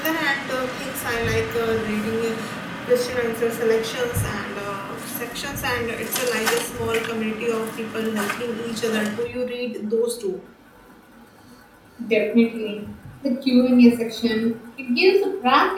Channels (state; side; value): identical; both; correlation 1.00